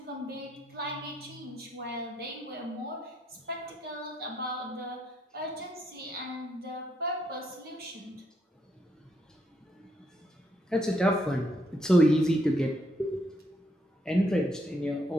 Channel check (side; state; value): both; normal; correlation 0.75